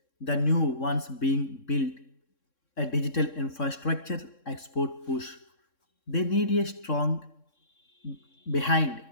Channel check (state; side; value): late; right; 3.6 ms